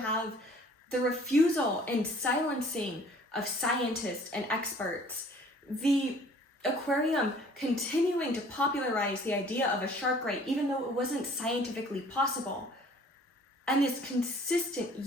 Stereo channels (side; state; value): both; normal; correlation 0.53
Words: the refusal and silencing of scientists and experts, the aquarium continuing to popularize the idea of a shark ray even though it wasn't scientifically possible, and this consistent